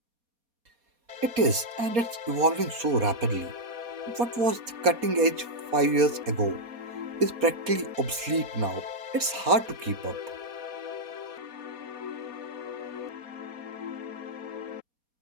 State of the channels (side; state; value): left; late; 4.2 ms